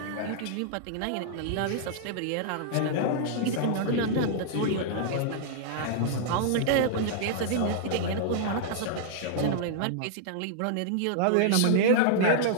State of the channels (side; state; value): both; different; correlation -0.01